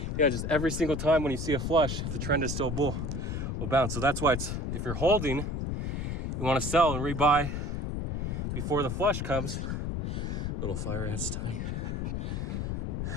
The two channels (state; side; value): noise; left; rumble, 2 dB below the sound